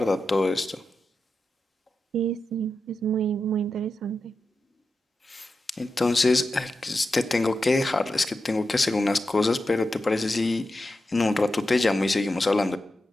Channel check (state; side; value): normal; both; correlation 0.90